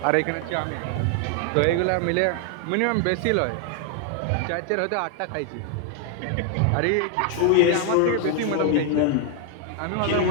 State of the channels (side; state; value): both; different; correlation 0.00